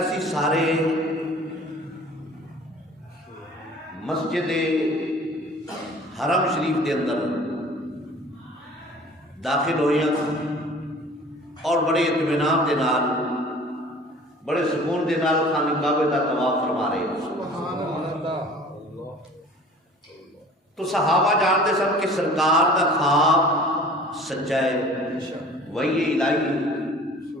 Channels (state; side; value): normal; both; correlation 0.47